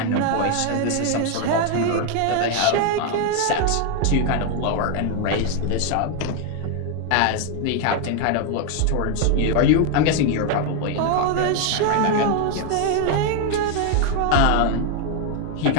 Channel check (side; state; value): both; different; correlation 0.01